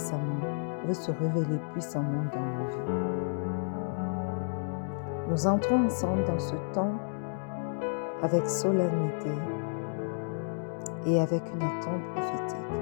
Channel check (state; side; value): silent; right; digital silence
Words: se révéler puissamment dans nos vies. Nous entrons ensemble dans ce temps avec solennité et avec une attente prophétique.